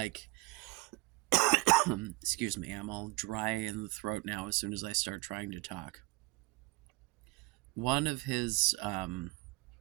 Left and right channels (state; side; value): quieter; left; 22.1 dB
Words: excuse me, I'm all dry in the throat now as soon as I start trying to talk. One of his